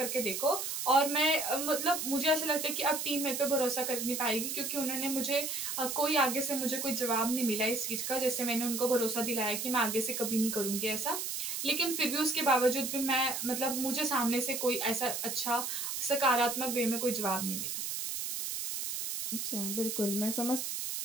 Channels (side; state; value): right; noise; hiss, 3 dB below the sound